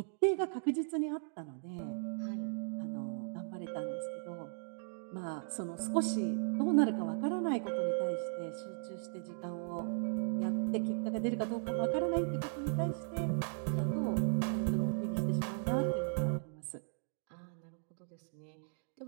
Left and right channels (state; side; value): silent; left; digital silence